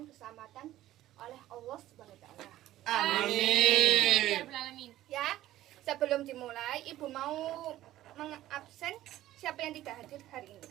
keselamatan oleh Allah Subhanahu wa taala. Amin. Ya, sebelum dimulai, Ibu mau mengabsen siapa yang tidak hadir hari ini.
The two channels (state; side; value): quieter; left; 14.4 dB